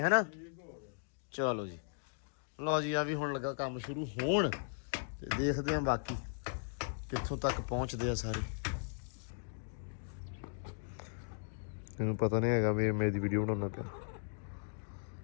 ਹੈਨਾ ਚਲੋ ਜੀ ਲਓ ਜੀ ਆ ਵੀ ਹੁਣ ਲੱਗਾ ਕੰਮ ਸ਼ੁਰੂ ਹੋਣ ਤੇ ਦੇਖਦੇ ਆਂ ਬਾਕੀ ਕਿੱਥੋਂ ਤੱਕ ਪਹੁੰਚਦੇ ਆ ਸਾਰੇ ਇਹਨੂੰ ਪਤਾ ਨਹੀਂ ਹੈਗਾ ਵੀ ਮੇਰੀ ਵੀਡੀਓ ਬਣਾਉਣਾ ਪਿਆ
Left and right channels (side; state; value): right; silent; digital silence